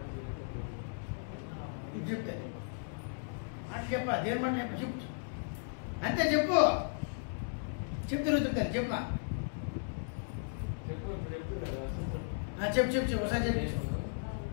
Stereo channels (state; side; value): silent; right; digital silence